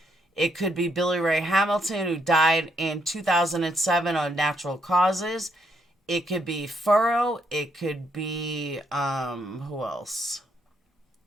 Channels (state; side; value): normal; both; correlation 0.74